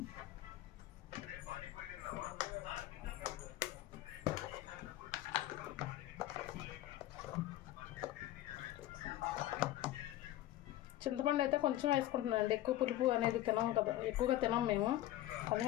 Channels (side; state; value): right; quieter; 14.6 dB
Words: చింతపండు అయితే కొంచెం వేసుకుంటున్నాను అండి, ఎక్కువ పులుపు అనేది తినాం కదా, ఎక్కువగా తినాం మేము,